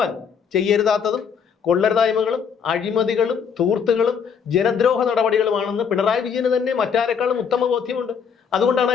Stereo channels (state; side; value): quieter; right; 6.8 dB